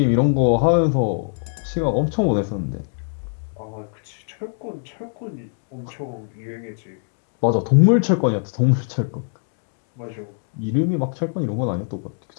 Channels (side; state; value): right; silent; digital silence